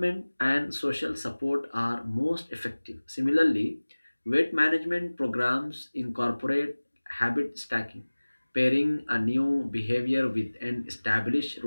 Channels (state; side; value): inverted; both; correlation -1.00